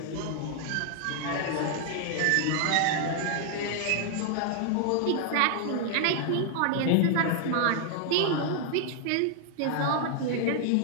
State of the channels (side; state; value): both; different; correlation 0.00